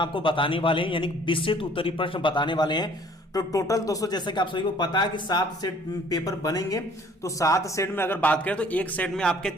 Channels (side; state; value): both; normal; correlation 0.56